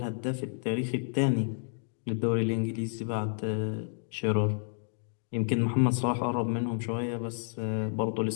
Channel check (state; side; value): silent; right; digital silence